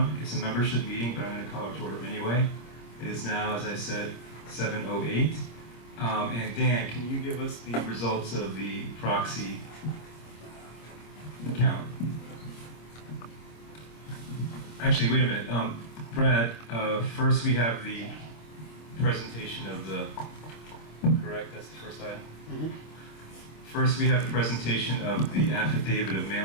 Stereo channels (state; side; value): late; right; 26 ms